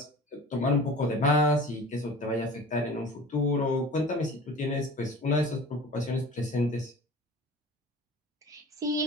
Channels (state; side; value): normal; both; correlation 0.41